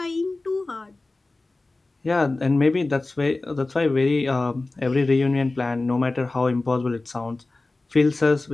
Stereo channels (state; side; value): quieter; right; 3.2 dB